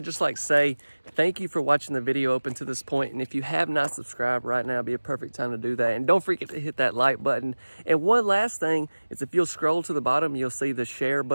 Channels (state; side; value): inverted; both; correlation -1.00